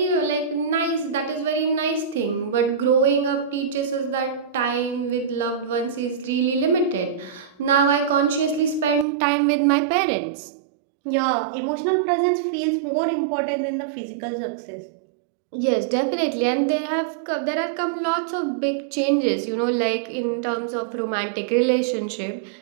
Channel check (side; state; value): left; drops out; at 9.1 s